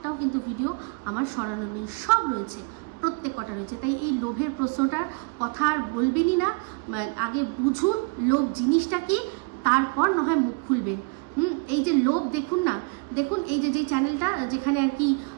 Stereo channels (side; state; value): left; quieter; 31.8 dB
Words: কিন্তু ভিডিও আমার সরানো নেই, সব রয়েছে, প্রত্যেক কটা রয়েছে। তাই এই লোভের প্রশ্নটার কথা আর বলবেনই না, আগে বুঝুন লোভ জিনিসটা কি, তারপর না হয় মুখ খুলবেন। এই যে লোভ দেখুন না, দেখুন এই যে চ্যানেলটা যেখানে আর কি